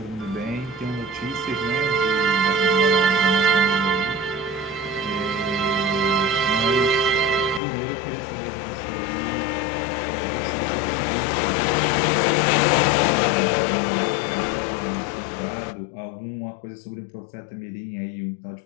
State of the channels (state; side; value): drops out; right; at 7.6 s